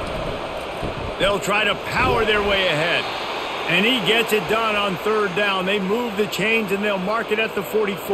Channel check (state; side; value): identical; both; correlation 1.00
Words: They'll try to power their way ahead. And he gets it done on third down. They move the chains, and they'll mark it at the